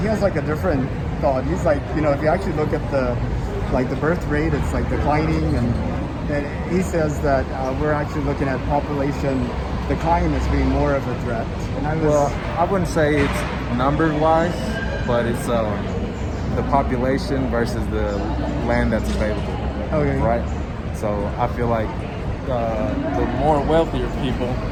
has like a different thought. He's like, if you actually look at the birth rate, it's like declining, and he says that we're actually looking at population decline as being more of a threat. And I wouldn't say it's number-wise, but it's the population versus the land that's available. Okay. Right? So I feel like the more wealthier people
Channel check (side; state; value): both; identical; correlation 1.00